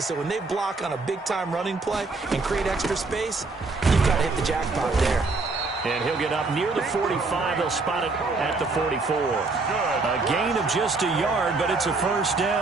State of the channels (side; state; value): left; quieter; 3.8 dB